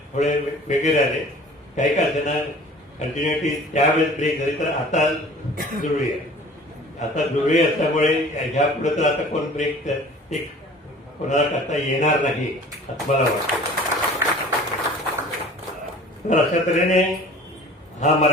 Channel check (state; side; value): normal; both; correlation 0.45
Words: थोडे वेगळे राहिले. काही का त्यांना कंटिन्युटी त्यावेळेस ब्रेक झाली, तर आता जुळली आहे. आता जुळली असल्यामुळे ह्या पुढे तर आता कोण ब्रेक ते कोणाला करता येणार नाही असं मला वाटतं. तर अशा तऱ्हेने हा